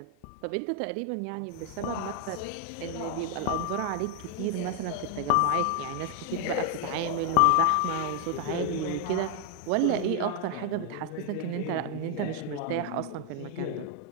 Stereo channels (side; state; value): both; different; correlation 0.00